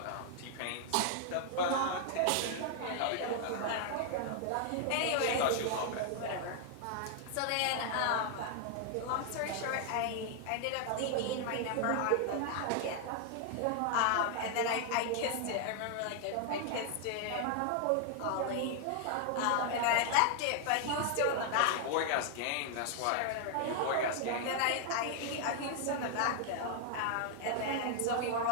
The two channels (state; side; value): different; both; correlation 0.00